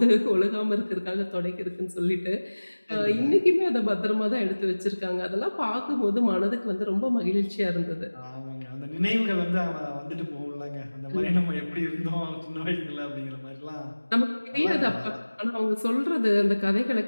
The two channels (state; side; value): inverted; both; correlation -1.00